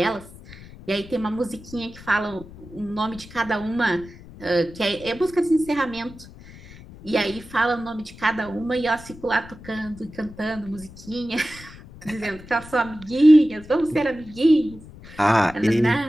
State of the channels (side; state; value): left; noise; rumble, 18 dB below the sound